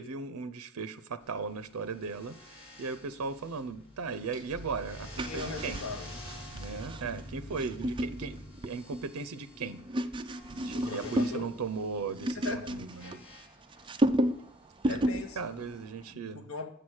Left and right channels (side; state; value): both; normal; correlation 0.44